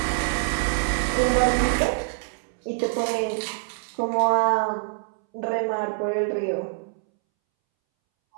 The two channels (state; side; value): silent; left; 62 dB below the other